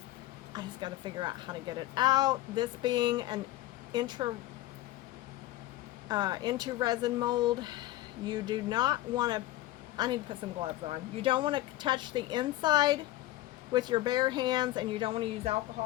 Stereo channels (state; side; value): quieter; right; 15.9 dB